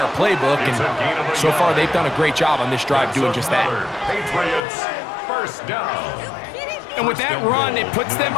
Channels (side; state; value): right; drops out; at 4.6 s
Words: playbook, and so far they've done a great job on this drive doing just that. Patriots, 1st down. And with that run, it puts them